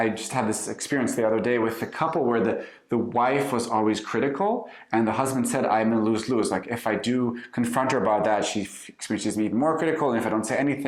just had this experience the other day with a couple where the wife was always critical and the husband said, I'm in lose-lose. Like if I do confront her about that, she experiences me even more critical. And if I don't say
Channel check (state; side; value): identical; both; correlation 1.00